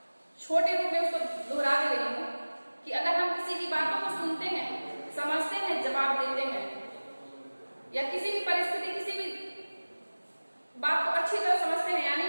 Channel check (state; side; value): inverted; both; correlation -1.00